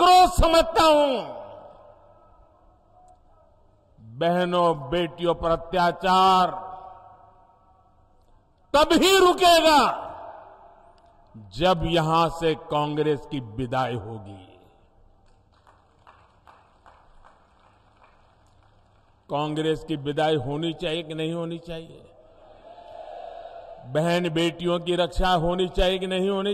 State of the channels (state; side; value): identical; both; correlation 1.00